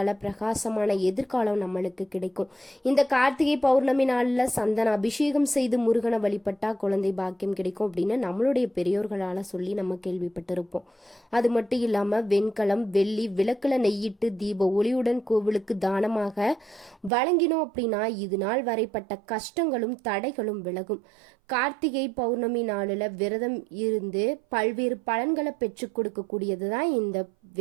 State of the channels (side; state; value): left; drops out; at 17.1 s